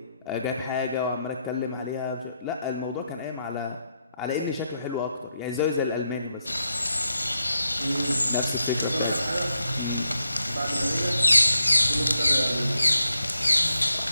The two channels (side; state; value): both; inverted; correlation -0.82